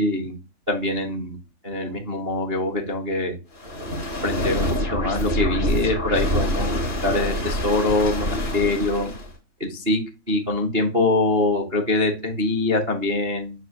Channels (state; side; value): late; left; 2.9 ms